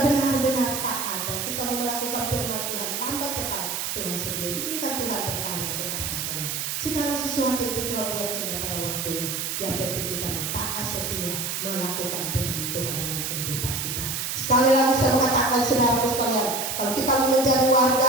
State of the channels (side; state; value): right; noise; hiss, 2 dB below the sound